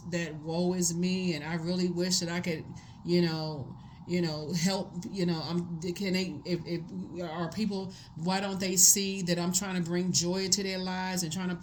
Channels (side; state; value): both; identical; correlation 1.00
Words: that woe is me and I really wish that I could, help, can they, if are people, why don't they see that I'm trying to bring joy to their lives and trying to